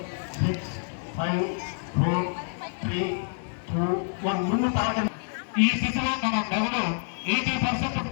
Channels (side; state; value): right; silent; 60 dB below the other